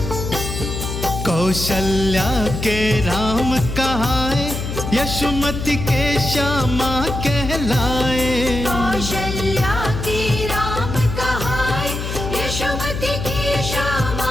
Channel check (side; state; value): left; noise; hum, 5 dB below the sound